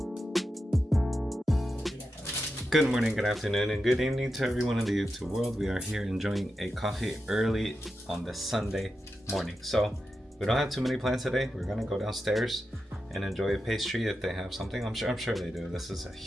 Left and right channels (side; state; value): both; normal; correlation 0.89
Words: Good morning, good afternoon, and good evening to everyone in the YouTube world. We are here enjoying a coffee early on the Sunday morning. So we don't have too many plans today. We're gonna go downstairs and enjoy a pastry if they have something. I'm sure they do. This is a